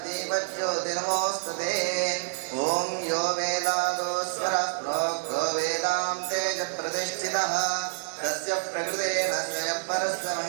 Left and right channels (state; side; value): silent; left; digital silence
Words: दीपज्योतिर्नमोऽस्तुते ओम यो वेदादो स्वरः प्रोक्तो वेदान्ते च प्रतिष्ठितः तस्य प्रकृतेन स्वयं परस्य